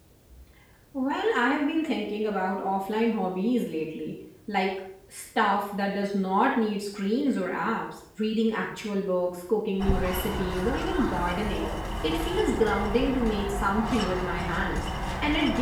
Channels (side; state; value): both; identical; correlation 1.00